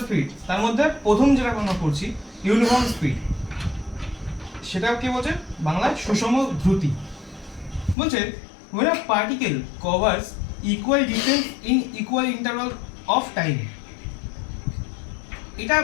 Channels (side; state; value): right; drops out; at 8.0 s